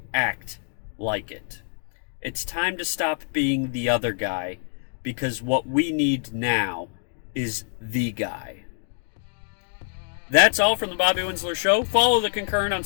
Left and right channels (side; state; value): right; silent; digital silence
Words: act like it. It's time to stop being the other guy because what we need now is the guy. That's all from the Bobby Winsler Show. Follow the Concurrent on